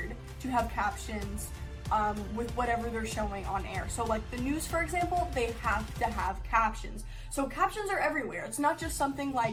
to have captions with whatever they're showing on air. So like the news, for example, they have to have captions. So captions are everywhere. It's not just something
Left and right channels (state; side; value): identical; both; correlation 1.00